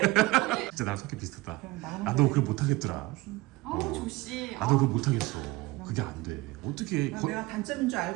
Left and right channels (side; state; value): left; quieter; 20.1 dB